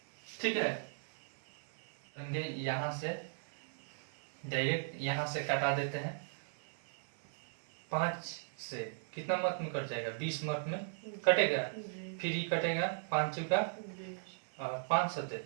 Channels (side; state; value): left; silent; digital silence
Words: ठीक है, यहाँ से डायरेक्ट यहाँ से कटा देते हैं 5 से कितना मत में कट जाएगा 20 मत में कटेगा, फिर ही कटेगा 5 चुका और 5 सते